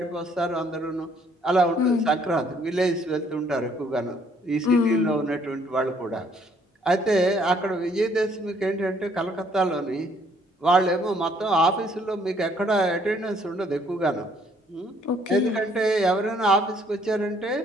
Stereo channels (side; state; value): both; normal; correlation 0.64